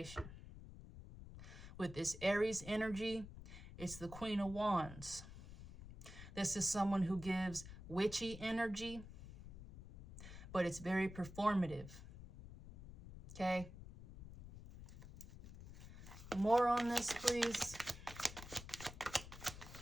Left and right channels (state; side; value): noise; left; rumble, 13 dB below the sound